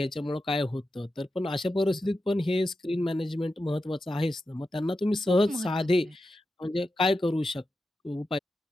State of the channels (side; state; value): both; normal; correlation 0.90